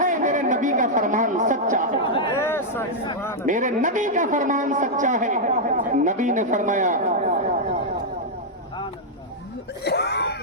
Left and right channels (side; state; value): both; normal; correlation -0.05